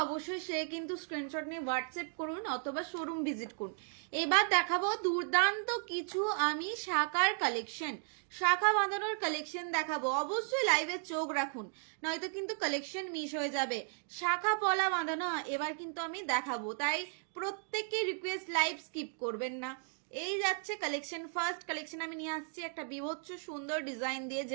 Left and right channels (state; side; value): silent; left; 54 dB below the other